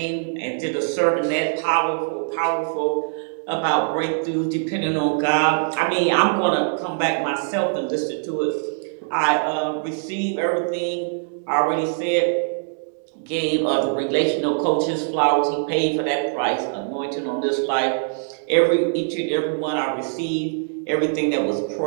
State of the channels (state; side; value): silent; left; digital silence